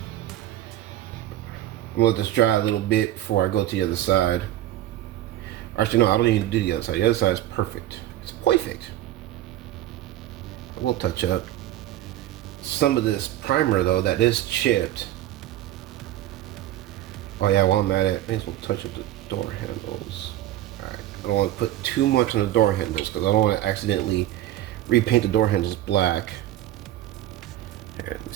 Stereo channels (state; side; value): quieter; left; 13.5 dB